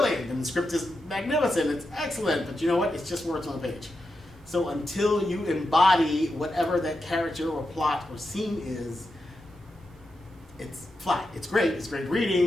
and the script is magnificent, it's excellent, but you know what? It's just words on a page. So until you embody whatever that character or plot or scene is, it's flat. It's great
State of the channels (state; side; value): normal; both; correlation 0.88